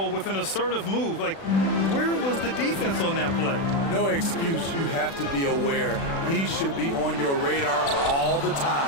with an assertive move. Like, where was the defense on that play? No excuse. You have to be aware. He should be on your radar all the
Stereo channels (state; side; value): late; right; 36 ms